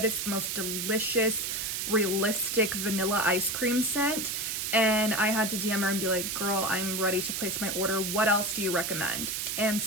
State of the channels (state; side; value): noise; right; hiss, 2 dB below the sound